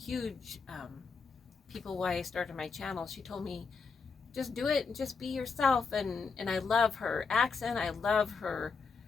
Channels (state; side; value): quieter; right; 5.0 dB